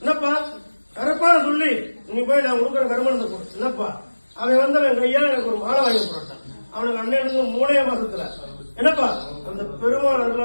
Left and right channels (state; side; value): inverted; both; correlation -1.00